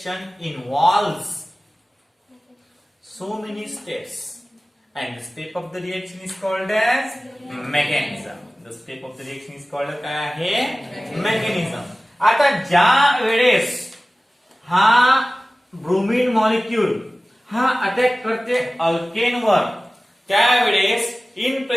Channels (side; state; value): both; normal; correlation 0.97